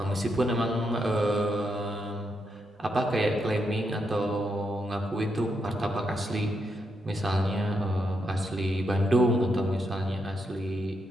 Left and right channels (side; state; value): both; normal; correlation 0.81